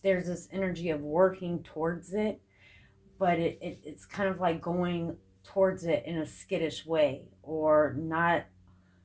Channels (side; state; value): both; identical; correlation 1.00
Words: this energy of working towards it, but it's kind of like going towards it in a skittish way, or not